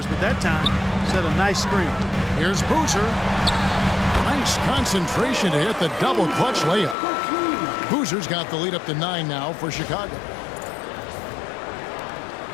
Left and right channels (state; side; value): drops out; right; at 7.0 s